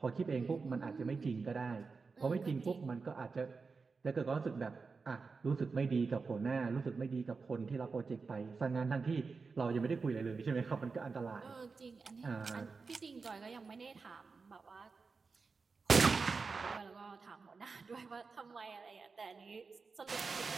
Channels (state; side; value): quieter; left; 4.6 dB